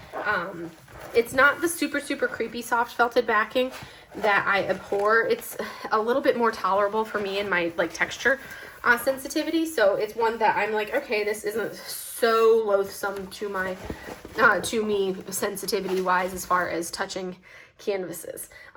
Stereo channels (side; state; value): both; identical; correlation 1.00